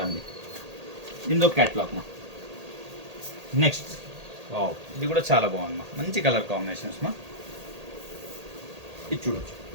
అండి. దీని ఒక క్యాట్లాగ్ మా. నెక్స్ట్. వావ్, ఇది కూడా చాలా బాగుంది మా, మంచి కలర్ కాంబినేషన్స్ మా. ఇది చూడొచ్చు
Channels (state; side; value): late; left; 1.8 ms